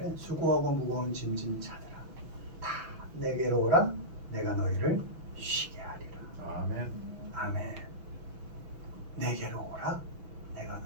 수고하고 무거운 짐진 자들아 다 내게로 오라 내가 너희를 쉬게 하리라. 아멘. 아멘. 내게로 오라 내가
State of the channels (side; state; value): left; late; 6.3 ms